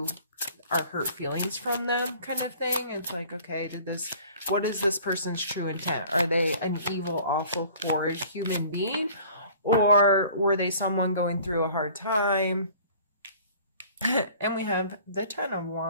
our hurt feelings from them, kind of thing. It's like, okay, what is this person's true intent? Are they an evil, awful, horrid human being? Or were they someone going through a hard time? And we have the Ten of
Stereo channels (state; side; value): inverted; both; correlation -0.49